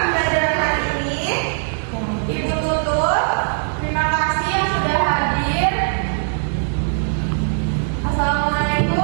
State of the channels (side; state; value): left; silent; digital silence